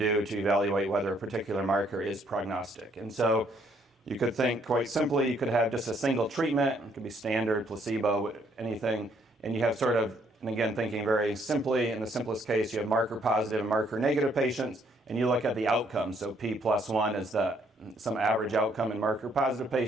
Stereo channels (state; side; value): normal; both; correlation 0.68